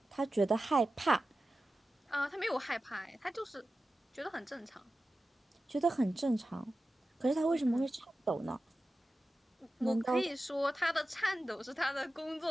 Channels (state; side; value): normal; both; correlation 0.94